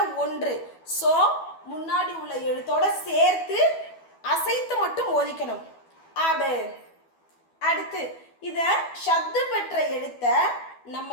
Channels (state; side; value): late; right; 12 ms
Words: 1. ஸோ முன்னாடி உள்ள எழுத்தோட சேர்த்து அசைத்து மட்டும் ஓதிக்கணும். அபு. அடுத்து இத ஷத்து பெற்ற எழுத்த